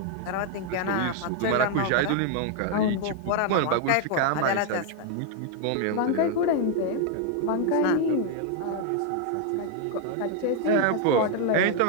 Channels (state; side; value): different; both; correlation 0.00